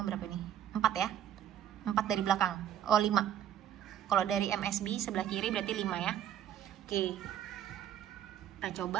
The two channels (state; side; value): quieter; left; 10.3 dB